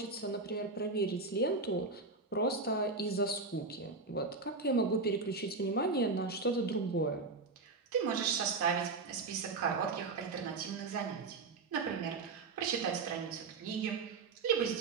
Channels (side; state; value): left; quieter; 3.9 dB